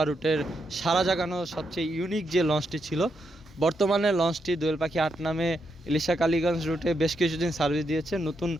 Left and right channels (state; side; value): normal; both; correlation 0.81